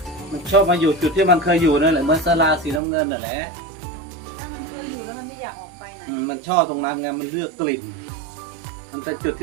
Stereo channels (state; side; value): drops out; left; at 2.8 s